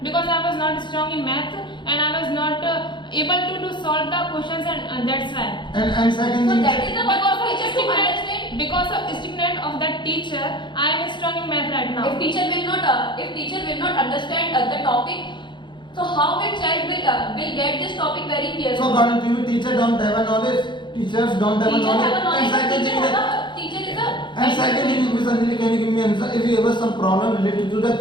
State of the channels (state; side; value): late; right; 0.23 ms